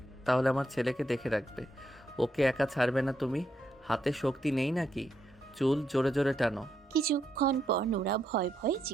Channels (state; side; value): normal; both; correlation 0.79